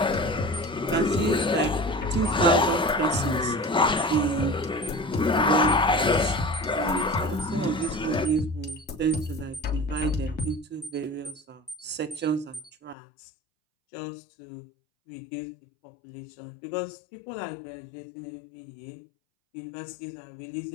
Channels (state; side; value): drops out; right; at 13.0 s